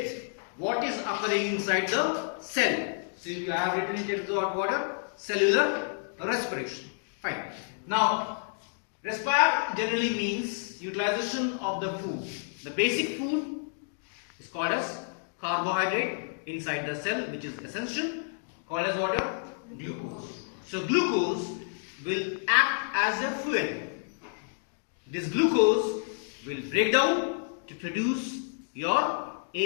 what is occurring inside the cell. So you have written it as the water, cellular respiration. Fine. Now, respire generally means utilization of the food. The basic food is called as carbohydrate inside the cell, which is essential, called as water, glucose. So glucose will act as a fuel. This glucose will break down to produce your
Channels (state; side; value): silent; right; digital silence